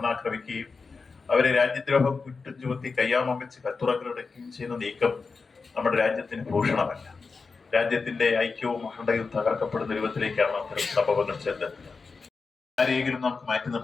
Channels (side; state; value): right; quieter; 4.6 dB